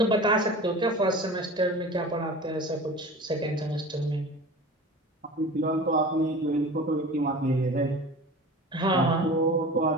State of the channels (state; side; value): normal; both; correlation 0.37